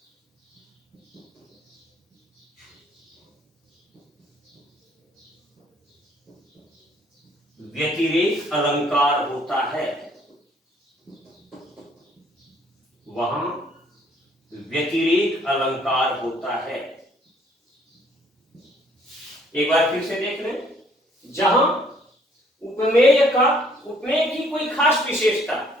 व्यतिरेक अलंकार होता है। वहां व्यतिरेक अलंकार होता है। एक बार फिर से देख लें। जहां उपमेय की कोई खास विशेषता,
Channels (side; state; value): both; normal; correlation 0.62